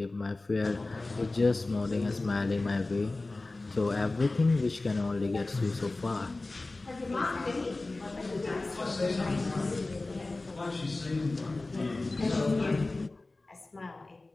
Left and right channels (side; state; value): right; quieter; 3.2 dB